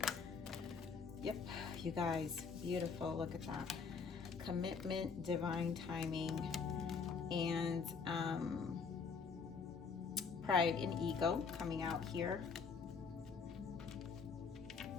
Yep, you guys, beautiful. Look at that. Commitment, divine timing, and pride and ego coming out here.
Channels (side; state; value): right; quieter; 5.4 dB